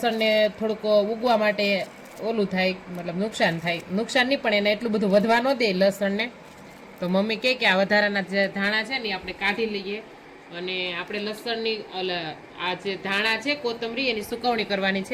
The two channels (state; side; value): identical; both; correlation 1.00